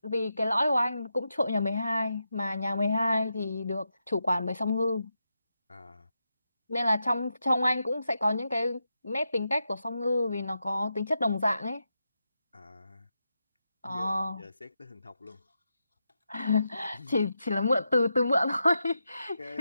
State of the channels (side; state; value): both; inverted; correlation -0.86